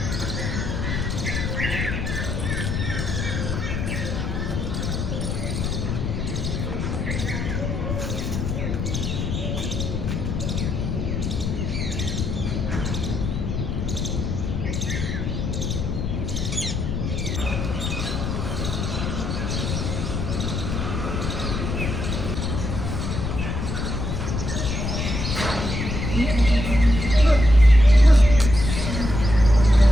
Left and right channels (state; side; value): noise; left; rumble, 2 dB below the sound